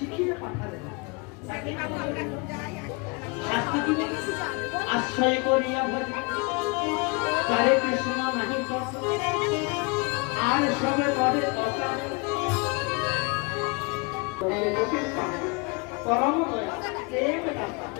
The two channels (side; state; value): right; quieter; 30.4 dB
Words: পাঠালেন আশ্রয় করিয়া তারে কৃষ্ণ নাহি আর সবে পরে পরম